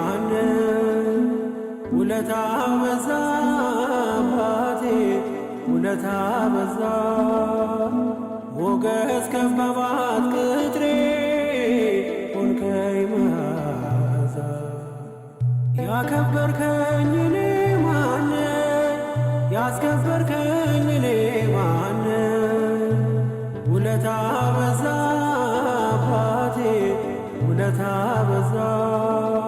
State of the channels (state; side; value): identical; both; correlation 1.00